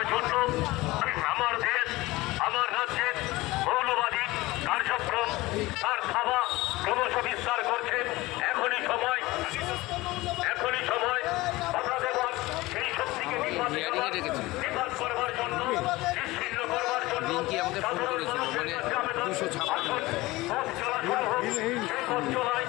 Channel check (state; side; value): quieter; right; 20.0 dB